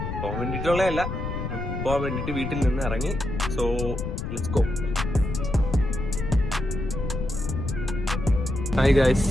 വീട്ടിൽ നിന്ന് ഇറങ്ങി. So let's go. Hi guys,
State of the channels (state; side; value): noise; left; rumble, 4 dB below the sound